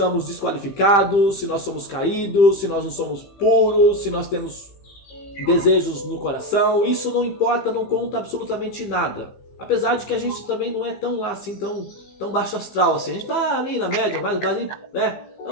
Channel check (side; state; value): right; late; 15 ms